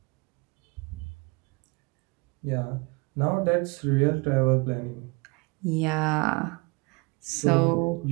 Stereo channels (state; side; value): quieter; left; 28.2 dB